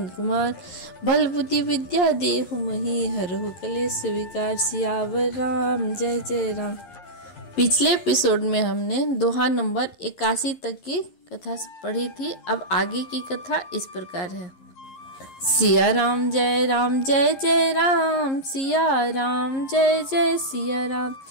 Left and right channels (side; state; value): right; late; 11 ms